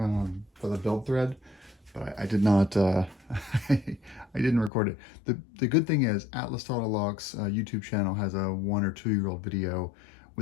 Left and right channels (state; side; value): drops out; right; at 4.7 s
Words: the build thread, but I did not, I didn't record it. The good thing is Atlas Throttle Lock's YouTube channel has a 1 or 2 year old video